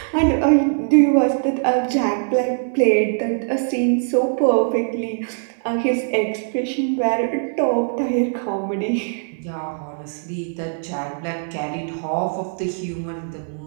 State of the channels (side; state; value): left; silent; digital silence